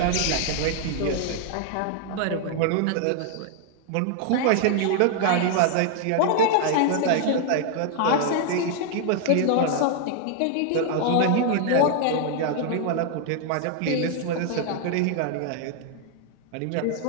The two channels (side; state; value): both; different; correlation 0.00